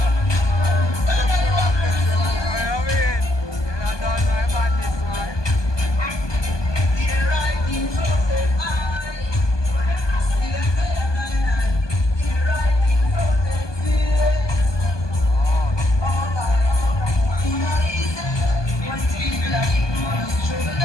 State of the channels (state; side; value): late; right; 1.2 ms